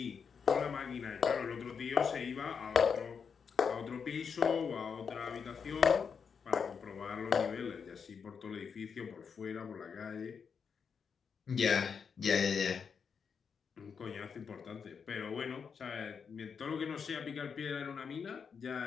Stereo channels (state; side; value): quieter; right; 6.3 dB